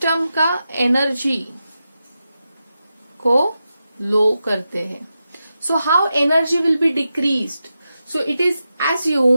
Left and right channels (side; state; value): both; inverted; correlation -0.89